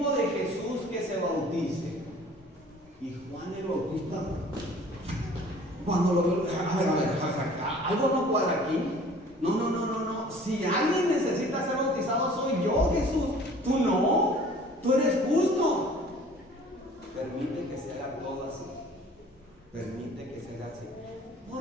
de Jesús que se bautice. Y Juan el Bautista, cuando lo vio, a ver, algo no cuadra aquí. No. Si alguien necesita ser bautizado soy yo, Jesús. Tú no, tú eres justo. Permite que se haga todo así. Permite que se haga así.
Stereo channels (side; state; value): both; normal; correlation 0.50